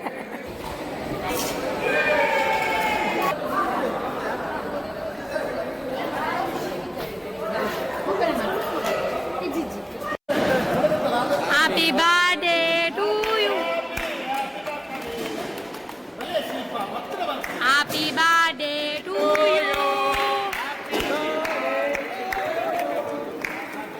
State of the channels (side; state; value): both; identical; correlation 1.00